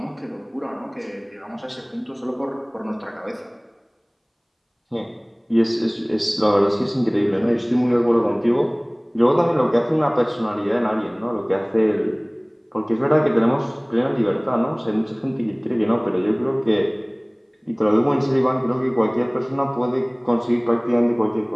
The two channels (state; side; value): identical; both; correlation 1.00